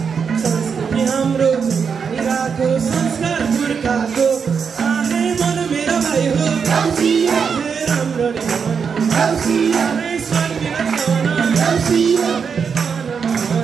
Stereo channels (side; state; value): left; quieter; 6.2 dB